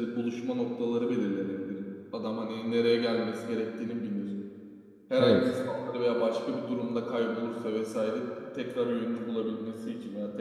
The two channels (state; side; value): identical; both; correlation 1.00